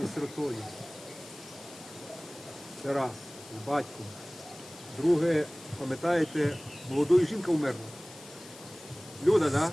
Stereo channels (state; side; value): noise; left; hiss, 18 dB below the sound